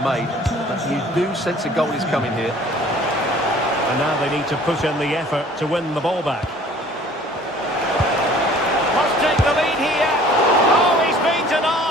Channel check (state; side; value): normal; both; correlation 0.52